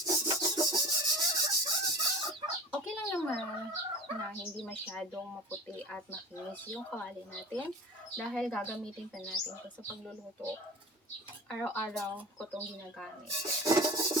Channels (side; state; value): both; normal; correlation 0.34